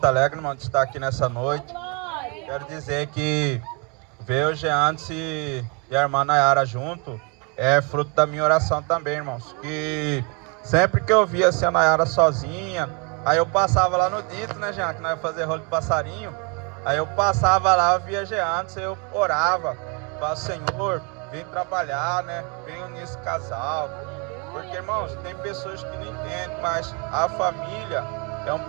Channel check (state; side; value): quieter; left; 33.4 dB